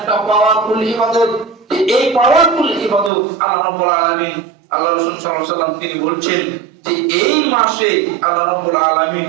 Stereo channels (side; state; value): left; drops out; at 3.1 s